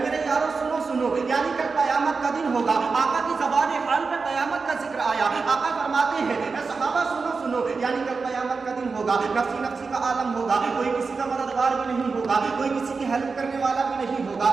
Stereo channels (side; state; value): left; quieter; 4.6 dB